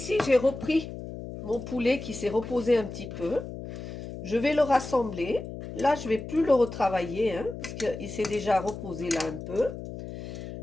j'ai repris mon poulet qui s'est reposé un petit peu. Je vais le rassembler. Là, je ne vais plus le retravailler, hein, parce qu'il s'est déjà reposé là un peu.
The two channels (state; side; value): noise; left; hum, 9 dB below the sound